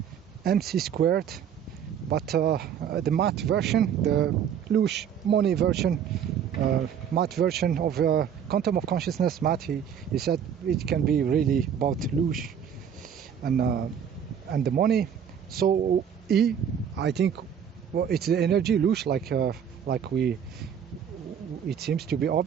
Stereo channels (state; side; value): quieter; left; 8.3 dB